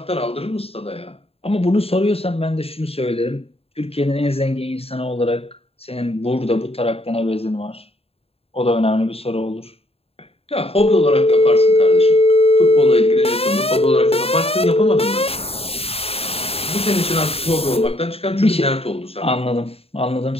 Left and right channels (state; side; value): late; right; 0.28 ms